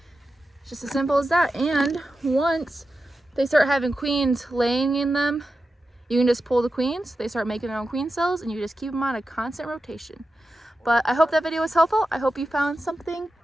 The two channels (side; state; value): both; normal; correlation 0.91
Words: it's just as simple as that. And once they start having queens laying in them, you can just pull the queens. They start making their own queen cells, and you just keep them on a constant rotation. But I hope that video was helpful. I hope you found something